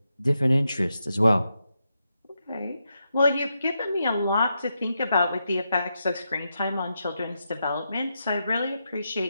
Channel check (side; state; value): both; inverted; correlation -0.85